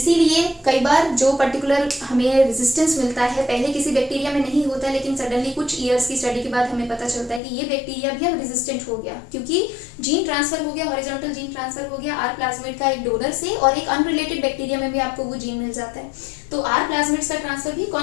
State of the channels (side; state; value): right; drops out; at 7.4 s